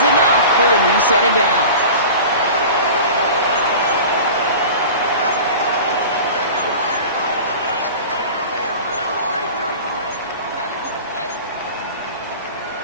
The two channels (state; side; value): inverted; both; correlation -0.36